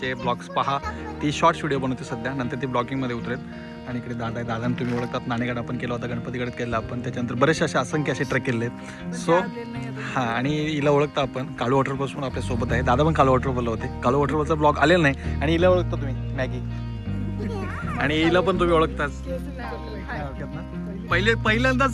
ब्लॉग्स पहा. ती शॉर्ट्स व्हिडिओ बनवते सध्या, नंतर ती ब्लॉगिंगमध्ये उतरेल. आणि इकडे दादा आहे, दादांना तुम्ही ओळखतात. नाणेगड आपण केला होता, गणपतीगड केला आपण, त्याच्यानंतर बरेचसे असे असंख्य असे ट्रेक केले आहेत. सो हां, आणि हिला ओळखता आपण. काळू वॉटरफॉल्स आपल्या सोबत आहे. दादा पण काळू वॉटरफॉलला होते. काळू वॉटरफॉलचा ब्लॉग आलेला नाही. आणि हिला ओळखता तुम्ही, मॅगी. आणि हिला पण तुम्ही ओळखताच ना.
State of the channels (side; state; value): both; identical; correlation 1.00